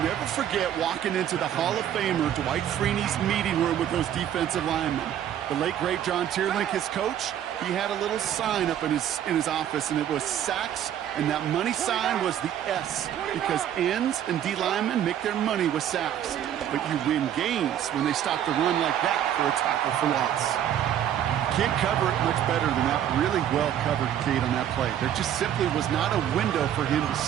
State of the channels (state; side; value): quieter; left; 10.4 dB